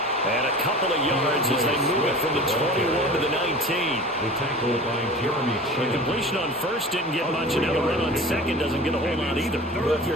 And a couple of yards as they move it from the 21 to the 19. The tackle by Jeremy Chin. The completion on first didn't get much, and now the run on second doesn't get a whole lot either. Well, if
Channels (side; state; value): both; normal; correlation 0.38